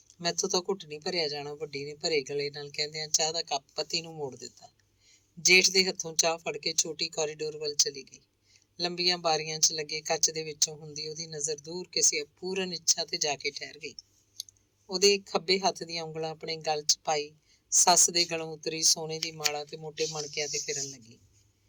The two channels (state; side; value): identical; both; correlation 1.00